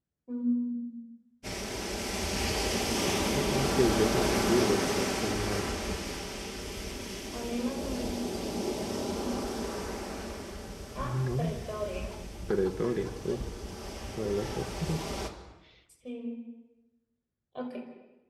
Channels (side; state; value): both; identical; correlation 1.00